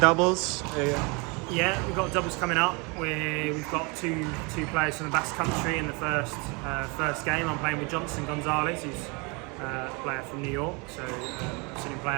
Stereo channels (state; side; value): quieter; left; 29.9 dB